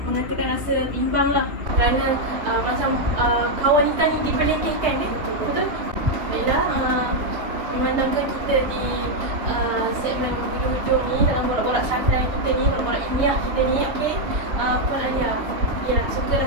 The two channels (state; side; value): late; left; 3.1 ms